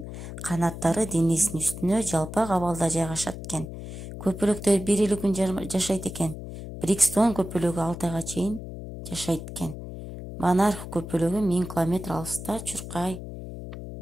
канаттары денесинин үстүнө жалпак абалда жайгашат экен. Көпөлөктөр 1 күн жашайт экен. Брикстон көпөлөгү 6 айга чейин жашайт экен. Монарх көпөлөгү 1000 километр алыста чуркай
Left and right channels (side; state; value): left; noise; hum, 10 dB below the sound